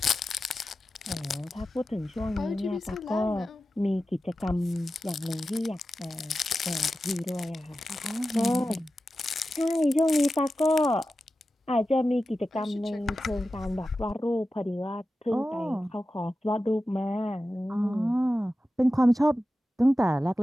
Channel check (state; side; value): normal; both; correlation 0.93